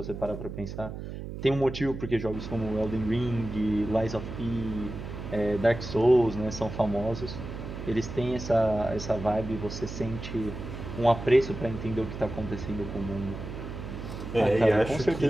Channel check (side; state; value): right; noise; hum, 8 dB below the sound